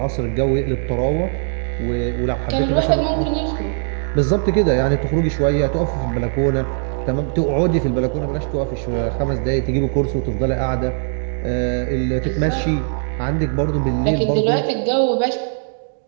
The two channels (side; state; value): left; silent; digital silence